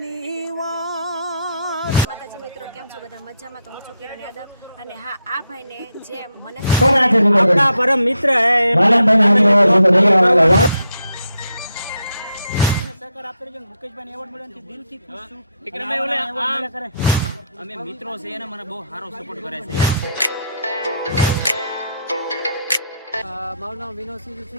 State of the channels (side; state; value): both; inverted; correlation -0.78